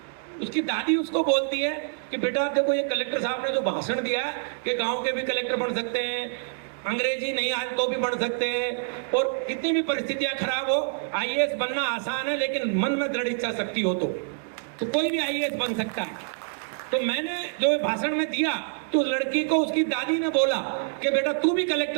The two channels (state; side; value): silent; left; digital silence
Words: उसकी दादी उसको बोलती है कि बेटा देखो ये कलेक्टर साहब ने जो भाषण दिया है कि गांव के भी कलेक्टर बन सकते हैं, अंग्रेजी नहीं आए तो भी बढ़ सकते हैं, और कितनी भी परिस्थितियां खराब हो आईएएस बनना आसान है, लेकिन मन में दृढ़ इच्छा शक्ति हो तो कोई भी आईएएस बन सकता है। तो मैंने जो भाषण में दिया तो उस लड़की को उसकी दादी ने बोला कि बेटा तू भी